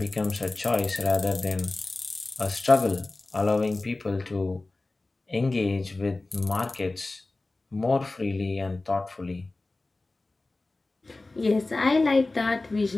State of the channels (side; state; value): right; quieter; 3.1 dB